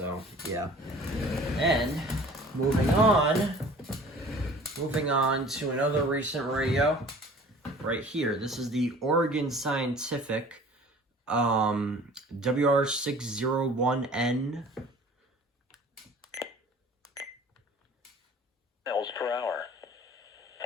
yeah. And moving on to another recent radio right here. This is the Oregon Scientific WR601N. Miles per hour.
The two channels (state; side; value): normal; both; correlation 0.47